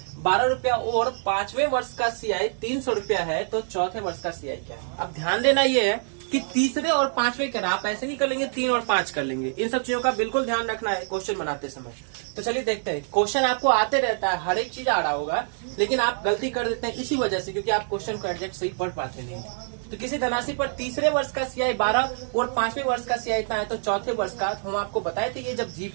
12 रुपया और 5वें वर्ष का सीआई 300 रुपया है, तो चौथे वर्ष का सीआई क्या है? अब ध्यान देना ये है कि तीसरे और 5वें करना, आप ऐसे नहीं कर लेंगे 3 और 5 कर लेंगे। इन सब चीजों का बिल्कुल ध्यान रखना है क्वेश्चन बनाते समय। तो चलिए देखते हैं, क्वेश्चन आपको आते रहता है, हर एक चीज आ रहा होगा, लेकिन आप गलती कर देते हैं इसी वजह से, क्योंकि आप क्वेश्चन को एग्जैक्ट सही पढ़ पाते नहीं। तो किसी धनराशि पर तीसरे वर्ष का सीआई 12 और 5वें वर्ष का सीआई इतना है, तो चौथे वर्ष का, हम आपको बताए थे ये जब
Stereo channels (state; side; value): silent; left; 61 dB below the other